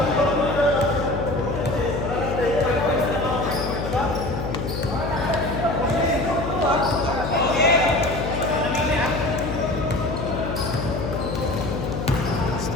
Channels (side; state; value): left; noise; hum, 4 dB below the sound